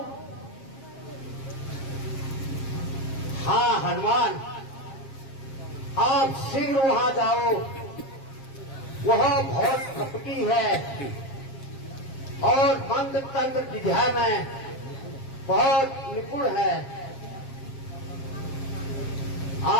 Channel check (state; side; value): late; right; 7.4 ms